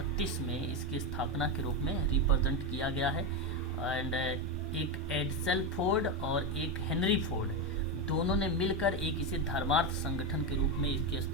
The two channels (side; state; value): both; normal; correlation 0.10